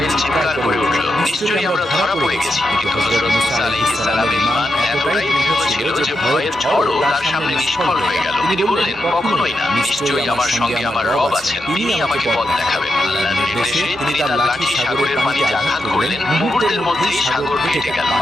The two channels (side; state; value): both; normal; correlation 0.85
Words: চিৎকার করে উঠল, নিশ্চয়ই আমরা ধরা পড়ে গেছি। কিন্তু হযরত মুসা আলাইহিস সালামের ঈমান এতটাই দৃঢ় ছিল যে ভয়ের ঝড়ও তার সামনে নিষ্ফল হয়ে গেল। তিনি বললেন, কখনোই না, নিশ্চয়ই আমার সঙ্গে আমার রব আছেন, তিনি আমাকে পথ দেখাবেন। আল্লাহর নির্দেশে তিনি তার লাঠি সাগরের পানিতে আঘাত করলেন। মুহূর্তের মধ্যেই সাগর ফেটে গেল,